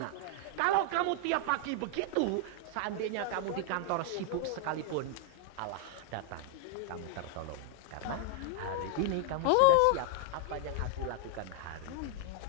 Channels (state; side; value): different; both; correlation -0.01